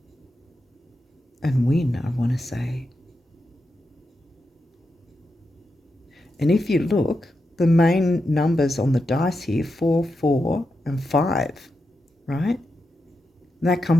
and win, I want to say. And if you look, the main numbers on the dice here, 4, 4, and 5, right? And that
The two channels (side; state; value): both; normal; correlation 0.87